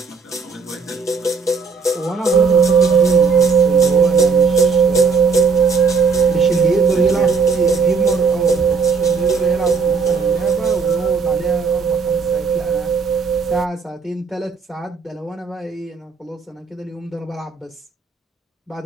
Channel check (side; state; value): left; quieter; 5.1 dB